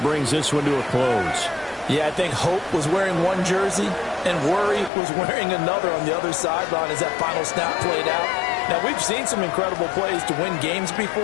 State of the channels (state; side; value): drops out; right; at 4.9 s